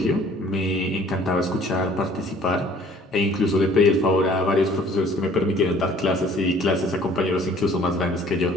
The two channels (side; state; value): both; normal; correlation 0.54